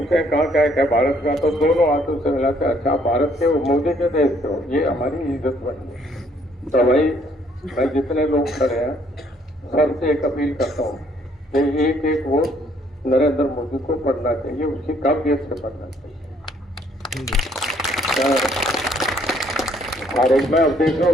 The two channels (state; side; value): normal; both; correlation 0.65